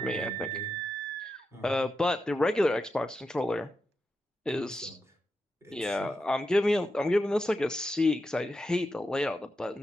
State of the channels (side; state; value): both; normal; correlation 0.88